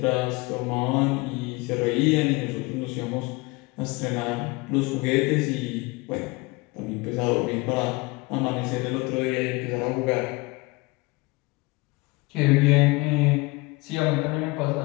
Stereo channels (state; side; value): quieter; right; 24.6 dB